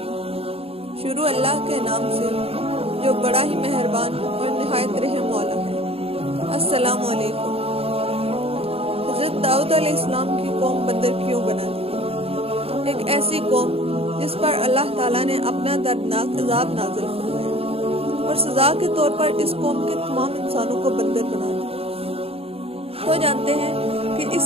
شروع اللہ کے نام سے جو بڑا ہی مہربان اور نہایت رحم والا ہے۔ السلام علیکم۔ حضرت داؤد علیہ السلام کی قوم بندر کیوں بنا دی؟ ایک ایسی قوم جس پر اللہ تعالیٰ نے اپنا دردناک عذاب نازل فرمایا اور سزا کے طور پر اس قوم کے تمام انسانوں کو بندر بنا دیا۔ تو جانتے ہیں کہ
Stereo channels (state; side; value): late; left; 0.28 ms